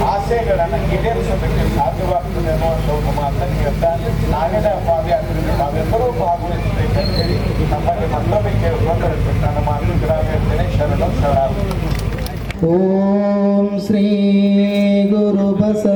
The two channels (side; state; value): both; identical; correlation 1.00